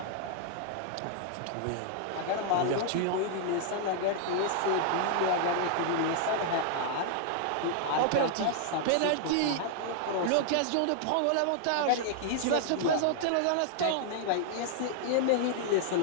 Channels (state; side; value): different; both; correlation -0.01